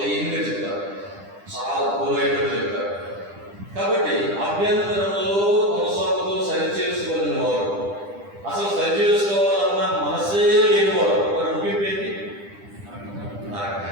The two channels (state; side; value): late; left; 10 ms